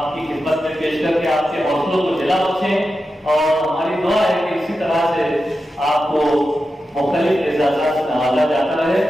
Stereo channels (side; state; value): both; normal; correlation 0.90